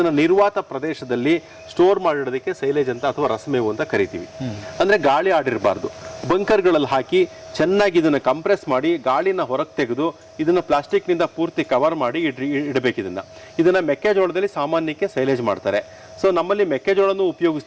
ನಿರ್ವಾತ ಪ್ರದೇಶದಲ್ಲಿ ಸ್ಟೋರ್ ಮಾಡಿಡೋದಕ್ಕೆ ಸೈಲೇಜ್ ಅಂತ ಅಥವಾ ರಸಮೇವು ಅಂತ ಕರಿತೀವಿ. ಅಂದ್ರೆ ಗಾಳಿ ಆಡಿರಬಾರ್ದು. ಬಂಕರ್ಗಳಲ್ಲಿ ಹಾಕಿ ಚೆನ್ನಾಗಿ ಇದನ್ನ ಕಂಪ್ರೆಸ್ ಮಾಡಿ ಗಾಳಿನ ಹೊರಗೆ ತೆಗೆದು ಇದನ್ನ ಪ್ಲಾಸ್ಟಿಕ್ನಿಂದ ಪೂರ್ತಿ ಕವರ್ ಮಾಡಿ ಇಡಬೇಕು. ಇದನ್ನ ಮೆಕ್ಕೆಜೋಳದಲ್ಲಿ ಸಾಮಾನ್ಯಕ್ಕೆ ಸೈಲೇಜ್ ಮಾಡ್ತಾರೆ. ಸೊ ನಮ್ಮಲ್ಲಿ ಮೆಕ್ಕೆಜೋಳನೂ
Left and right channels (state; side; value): identical; both; correlation 1.00